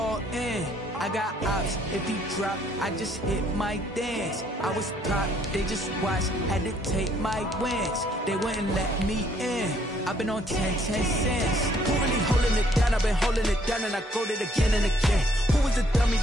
in. I got ops, if he drop, I just hit my dance. I was pop, they just watched, had to take my wins. They wouldn't let me in. I've been on 10 cents. Who really holding it down? I've been holding it down and I go it again and again. Who was the dummy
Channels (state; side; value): normal; both; correlation 0.65